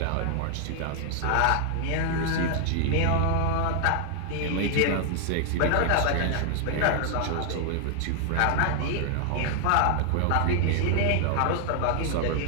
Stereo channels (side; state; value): both; different; correlation 0.00